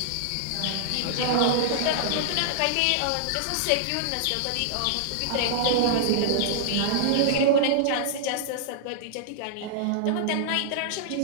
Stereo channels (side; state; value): both; different; correlation -0.01